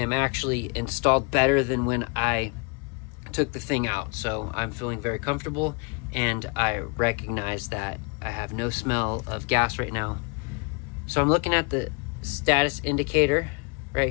actually installed better than when I took the thing out. So I'm feeling very comfortable and I recognize that I have no smell of gas right now. So I'm looking at the status indicator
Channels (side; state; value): right; quieter; 33.2 dB